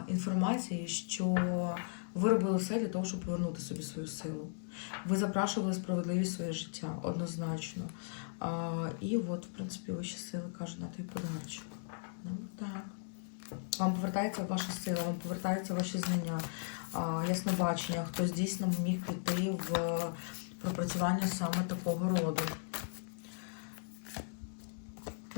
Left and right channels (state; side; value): silent; right; 53 dB below the other